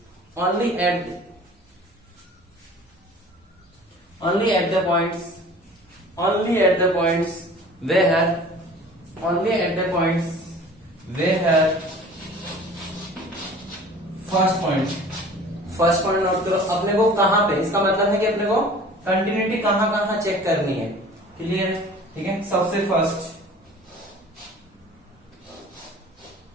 only at the points where first point note करो। अपने को कहां पे, इसका मतलब है कि अपने को कंटिन्यूटी कहां कहां चेक करनी है। क्लियर है, ठीक है। सबसे first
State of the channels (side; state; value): both; normal; correlation 0.45